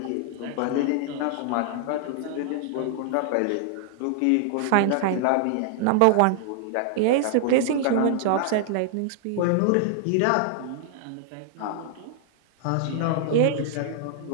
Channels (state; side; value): different; both; correlation 0.00